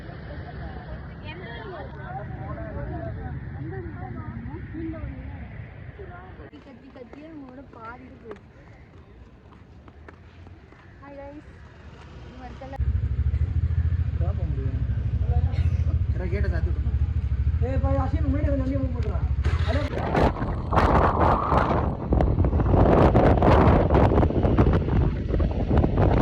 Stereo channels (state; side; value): identical; both; correlation 1.00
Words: கத்தி கத்தியே உங்களோட பாதிட்டு போயிடுச்சு. Hi guys, ini warga berapa முடியும்? கேட்ட சாத்து. பாய் ஆஷின் முன்னாடி வந்து மூவ் பண்றா. ஹலோ.